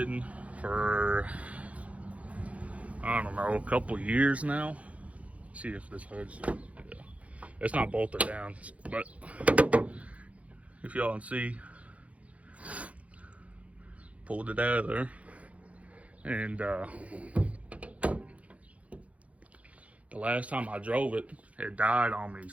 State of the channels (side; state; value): left; late; 0.066 ms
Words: for, I don't know, a couple years now. See if this hood's, yeah. It's not bolted down, but if y'all can see, pulled it out of there. And the last time I drove it, it died on me,